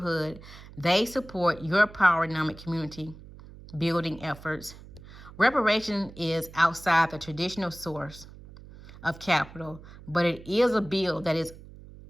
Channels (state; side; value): noise; right; hum, 18 dB below the sound